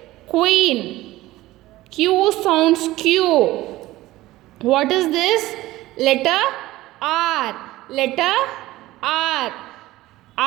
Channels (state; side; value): quieter; left; 17.2 dB